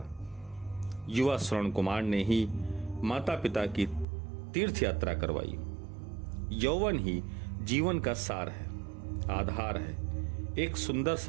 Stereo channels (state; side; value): drops out; left; at 4.0 s